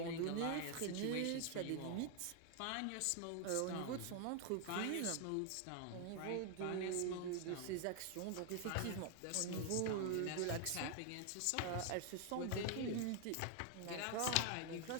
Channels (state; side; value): different; both; correlation 0.00